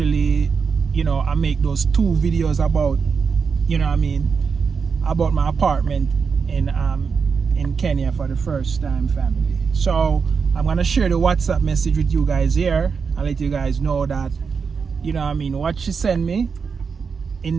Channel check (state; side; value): quieter; left; 5.6 dB